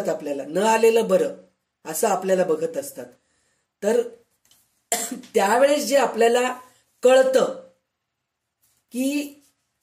आपल्याला न आलेलं बरं असं आपल्याला बघत असतात. तर त्यावेळेस जे आपल्याला कळतं की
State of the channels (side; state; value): both; identical; correlation 1.00